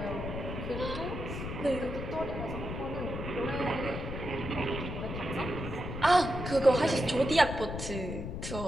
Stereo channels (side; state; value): left; noise; rumble, 6 dB below the sound